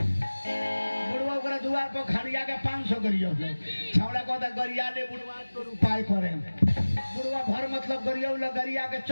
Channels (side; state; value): both; inverted; correlation -1.00